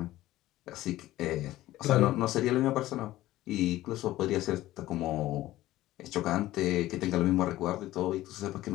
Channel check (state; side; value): quieter; right; 15.8 dB